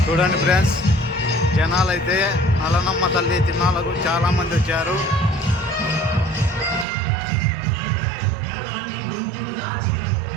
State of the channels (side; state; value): left; drops out; at 6.9 s